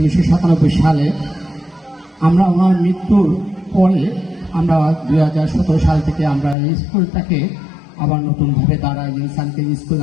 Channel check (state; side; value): drops out; right; at 6.6 s